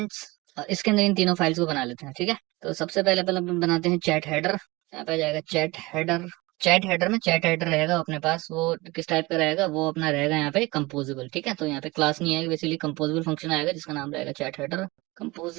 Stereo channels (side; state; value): left; quieter; 22.5 dB